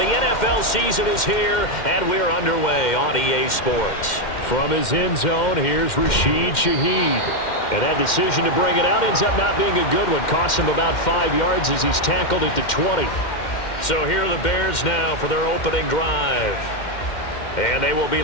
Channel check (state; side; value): late; right; 2.1 ms